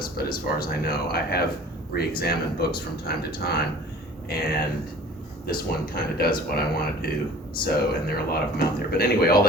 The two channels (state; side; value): normal; both; correlation 0.46